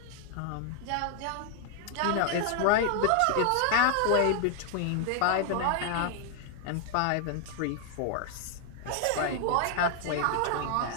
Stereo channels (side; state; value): both; different; correlation 0.00